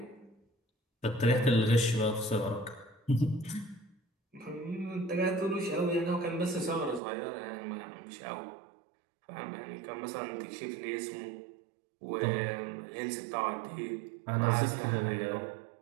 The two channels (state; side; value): drops out; left; at 7.0 s